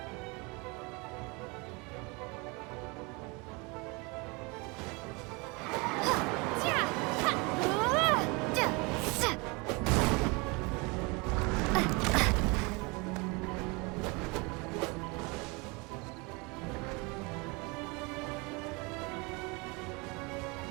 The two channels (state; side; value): quieter; left; 27.9 dB